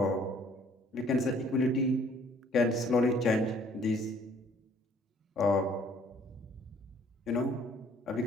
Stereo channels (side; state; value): both; normal; correlation 0.59